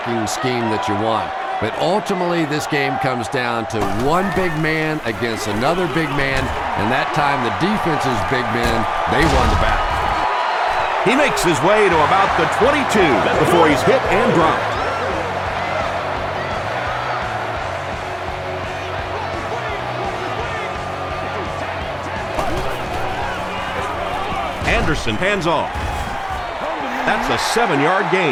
scheme that you want, but ultimately this game comes down to one big man against another big man, and that time the defense's big men, they won the battle. He makes his way to about the 22 before he's hit and dropped. Anderson hands off. That's a 7-yard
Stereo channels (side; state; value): both; identical; correlation 1.00